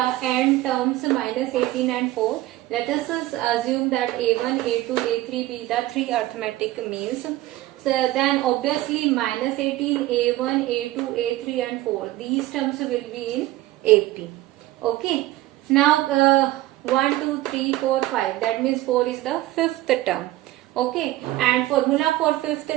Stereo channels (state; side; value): quieter; left; 16.6 dB